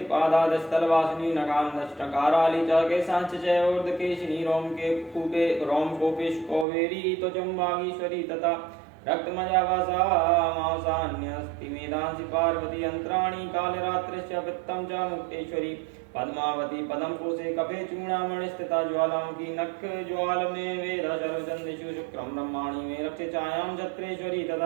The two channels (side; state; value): left; drops out; at 6.7 s